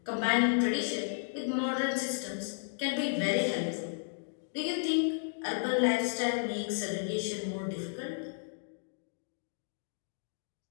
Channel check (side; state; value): right; silent; digital silence